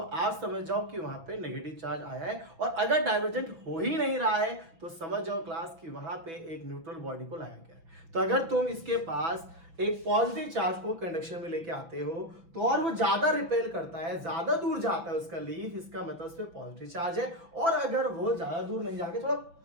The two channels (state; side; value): late; left; 6.0 ms